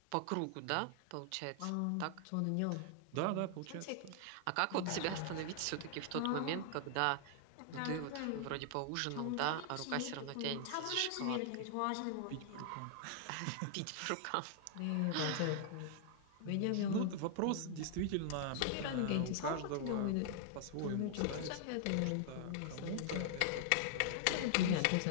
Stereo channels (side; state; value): both; different; correlation -0.01